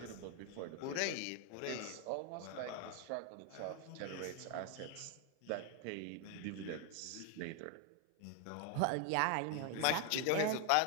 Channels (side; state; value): both; different; correlation 0.01